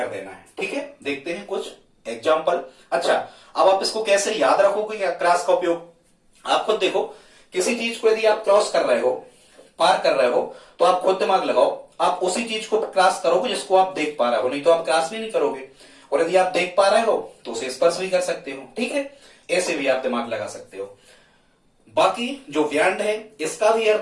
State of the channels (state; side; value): identical; both; correlation 1.00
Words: देना है। ठीक है, देखते हैं कुछ एग्जाम्पल। अच्छा, अब आप इसको कैसे याद रखोगे कि अक्रॉस का उपयोग। आप खुद देखो, किसी चीज को यदि आप क्रॉस कर रहे हो, पार कर रहे हो, तो आप खुद दिमाग लगाओ, आप उसी चीज को क्रॉस करोगे जिसको आप देख पा रहे हो, नहीं तो आप क्रॉस भी नहीं करोगे। और यदि आप देख पा रहे हो तो उसे स्पर्श भी कर सकते हो। ठीक है, ऐसे भी आप दिमाग लगा सकते हो। बाकी जो व्यंड है इसका भी